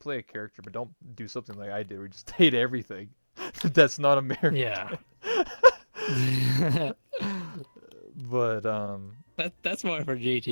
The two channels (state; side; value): inverted; both; correlation -1.00